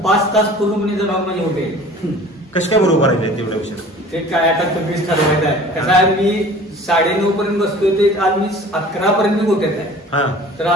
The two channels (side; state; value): both; normal; correlation 0.45